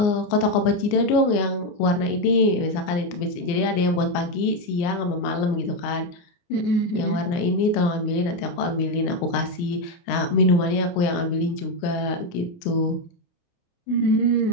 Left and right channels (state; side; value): late; right; 29 ms